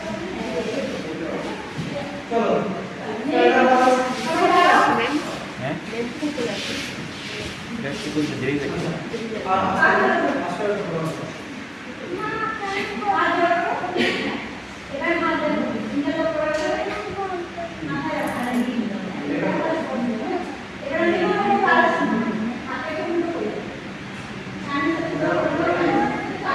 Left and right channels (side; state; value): both; identical; correlation 1.00